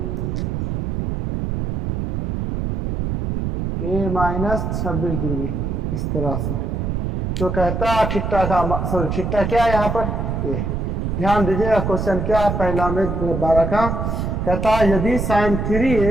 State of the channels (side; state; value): right; noise; rumble, 2 dB below the sound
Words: a minus 26 degree इस तरह से, तो कहता है थीटा का सॉरी थीटा क्या है यहाँ पर a। ध्यान दीजिएगा क्वेश्चन क्या है पहला में 12 का, कहता है यदि साइन